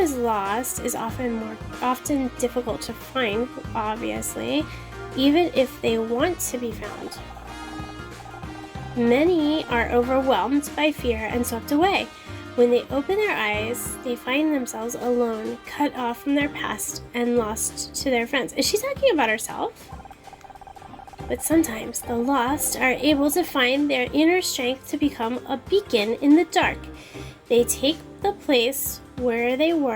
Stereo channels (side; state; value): both; identical; correlation 1.00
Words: lost is often difficult to find, obviously, even if they want to be found. Many are overwhelmed by fear and swept away. When they open their eyes, they find themselves alone, cut off from their past, and lost to their friends. Is she talking about herself? But sometimes the lost are able to find their inner strength to become a beacon in the dark. They take the place where they